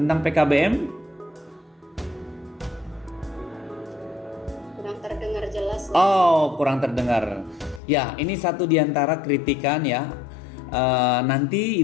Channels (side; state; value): right; drops out; at 7.8 s